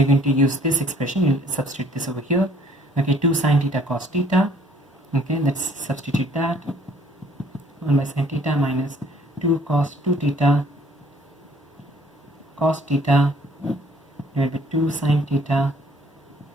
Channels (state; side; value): normal; both; correlation 0.58